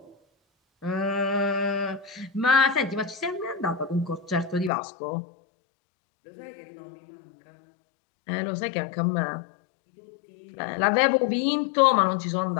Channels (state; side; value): drops out; right; at 4.7 s